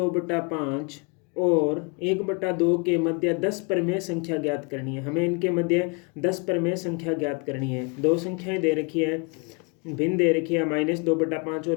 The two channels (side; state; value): right; quieter; 32.8 dB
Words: और 1/2 के मध्य 10 प्रमेय संख्या ज्ञात करनी है। हमें इनके मध्य 10 प्रमेय संख्या ज्ञात करनी है। दो संख्याएं दे रखी है, भिन्न दे रखी है, -2/5